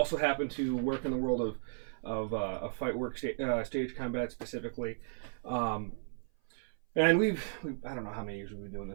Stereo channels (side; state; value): left; silent; 55 dB below the other